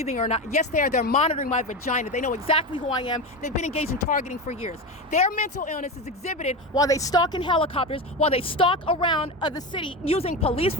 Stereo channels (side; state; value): both; normal; correlation 0.20